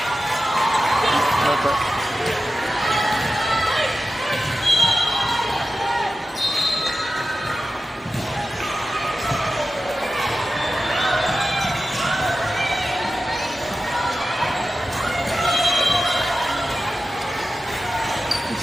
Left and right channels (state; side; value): normal; both; correlation 0.93